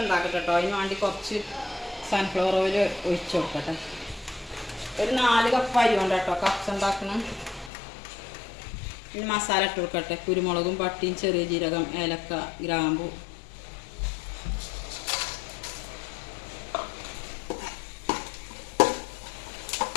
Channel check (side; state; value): right; drops out; at 7.7 s